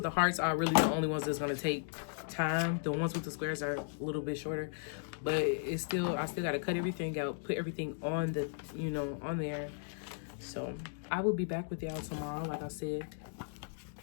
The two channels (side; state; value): right; silent; digital silence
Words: the hearts are really the only ones that's gonna take time. The ones with the squares are a little bit shorter, but I still gotta cut everything out, put everything on the, you know, on there. So I will be back with y'all tomorrow, like I said.